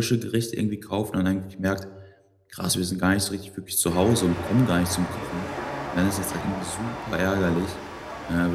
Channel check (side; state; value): both; identical; correlation 1.00